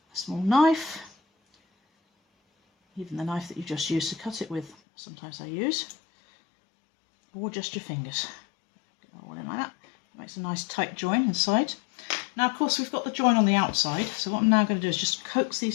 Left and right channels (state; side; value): drops out; right; at 4.8 s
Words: a small knife, even the knife that you just used to cut it with, sometimes I use, or just your fingers. Get that all in like that. It makes a nice tight join inside. Now, of course, we've got the join on the outside, so what I'm now going to do is just coax